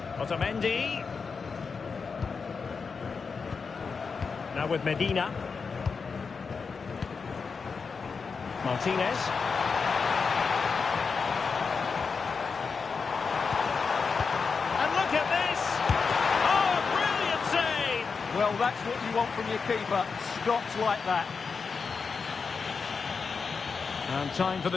Otamendi. Now with Medina. Martinez. And look at this! Oh, brilliant save! Well, that's what you want from your keeper. Stops like that. And time for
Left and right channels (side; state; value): right; quieter; 5.2 dB